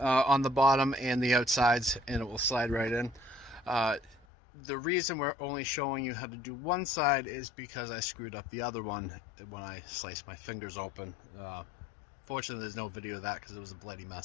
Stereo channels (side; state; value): right; drops out; at 4.2 s